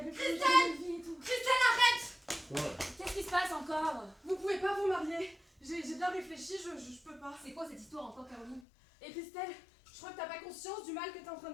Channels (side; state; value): right; drops out; at 8.7 s